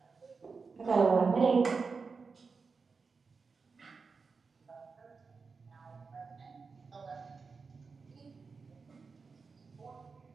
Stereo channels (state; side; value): quieter; left; 4.8 dB